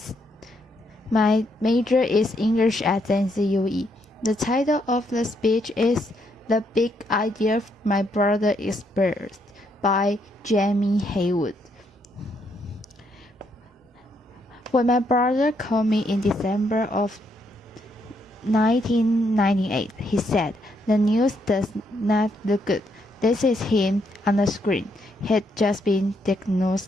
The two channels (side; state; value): both; normal; correlation 0.75